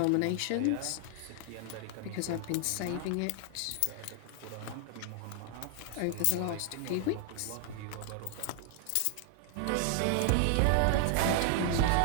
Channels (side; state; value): both; different; correlation 0.00